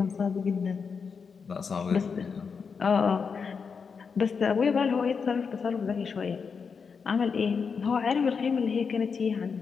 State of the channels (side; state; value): right; quieter; 5.7 dB